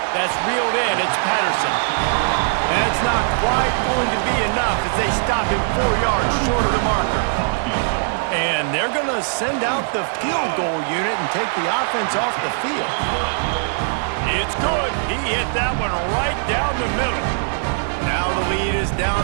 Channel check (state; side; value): silent; left; digital silence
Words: That's reeled in, it's Patterson. That's not quite going to be enough as they stop him 4 yards short of the marker. And they're going to send out the field goal unit and take the offense off the field. It's good. He hit that one right down the middle. Now the lead is down